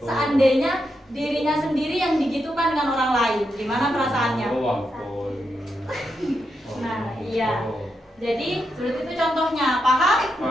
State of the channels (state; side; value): normal; both; correlation 0.84